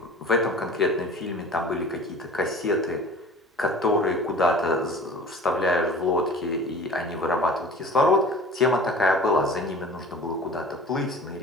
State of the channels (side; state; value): both; normal; correlation 0.42